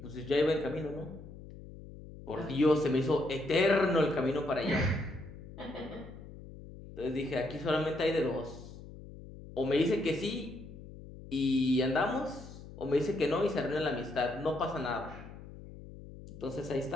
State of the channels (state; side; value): noise; left; hum, 15 dB below the sound